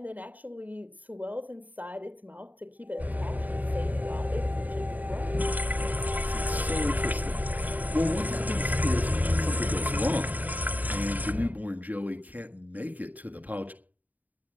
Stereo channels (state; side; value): late; left; 0.079 ms